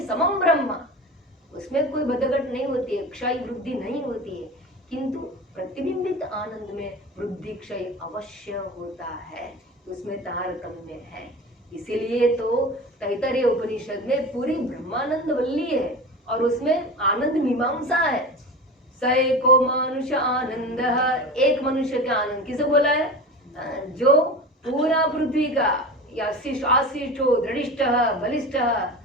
समम ब्रह्म, उसमें कोई बदघट नहीं होती है, क्षय वृद्धि नहीं होती है। किंतु प्रतिबिंबित आनंद में वृद्धि क्षय अवश्य होता है, उसमें तारतम्य है। इसीलिए तो तैतरीय उपनिषद में पूरी ब्रह्मानंद वल्ली है, और उसमें आनंद मीमांसा है। स एको मनुष्य आनंद, एक मनुष्य का आनंद किसे बोला है? जो पूरा पृथ्वी का आशिष्टो दृढ़िष्ट बलिष्ठ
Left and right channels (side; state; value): both; normal; correlation 0.31